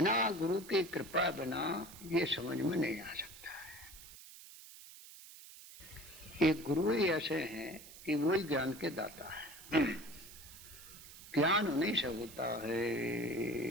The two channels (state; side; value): noise; right; hiss, 17 dB below the sound